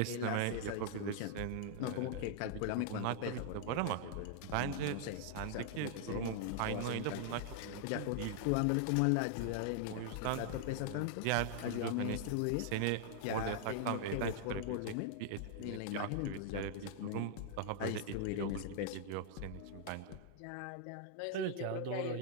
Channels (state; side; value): different; both; correlation -0.01